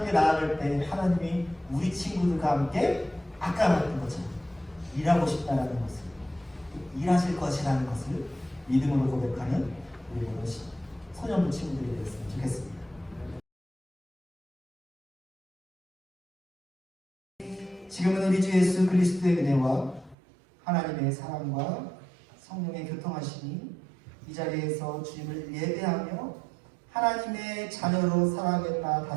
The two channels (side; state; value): left; drops out; at 20.2 s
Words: 나아갈 때 하나님이 우리 친구들과 함께 아까 말했던 것처럼 일하고 싶다라는 것을 일하실 것이라는 것을 믿음으로 고백하는 우리 모든 소년부 친구들이 되었으면 좋겠습니다. 지금은 우리 주 예수 그리스도의 은혜와 하나님의 사랑과 성령의 교통하심이 이 자리에서 주님을 예배하며 하나님의 자녀로 살아가겠다